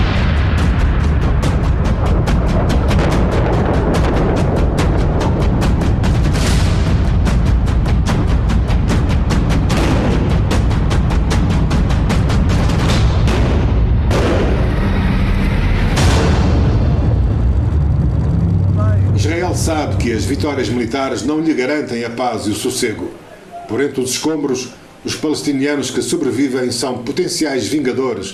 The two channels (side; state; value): both; identical; correlation 1.00